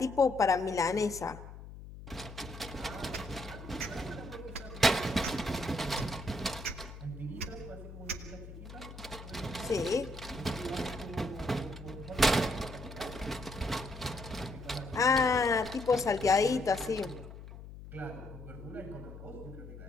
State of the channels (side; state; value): left; noise; hum, 13 dB below the sound